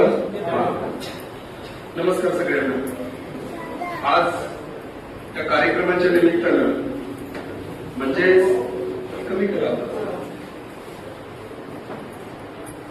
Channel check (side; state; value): both; identical; correlation 1.00